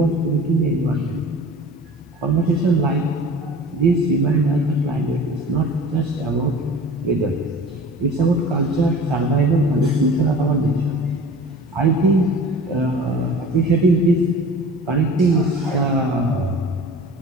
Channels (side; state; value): both; normal; correlation 0.41